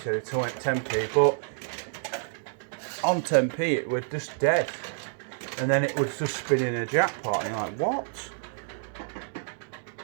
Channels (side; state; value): left; silent; digital silence